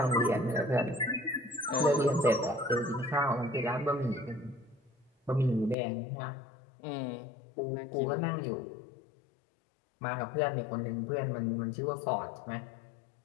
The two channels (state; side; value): drops out; right; at 5.8 s